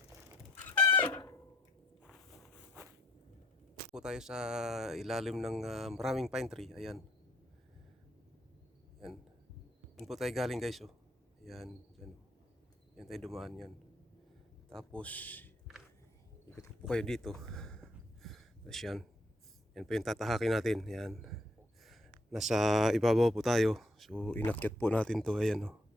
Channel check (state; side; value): normal; both; correlation 0.68